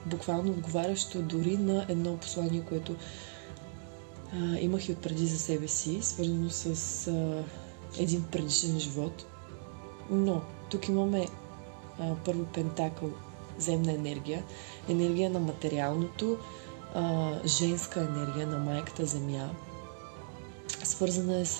буквално отговарящо дори на едно послание, което имах и отпреди за себе си, свързано с един предишен живот. Но тук имаме първо пентакъл, земна енергия на материалното, женска енергия на майката земя. Свързана е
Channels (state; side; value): silent; left; digital silence